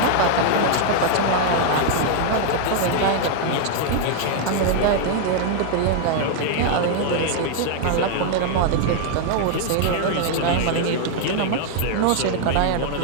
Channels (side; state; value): both; different; correlation 0.00